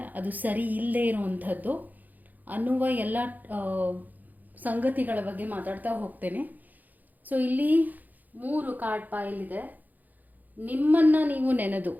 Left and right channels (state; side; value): late; left; 0.083 ms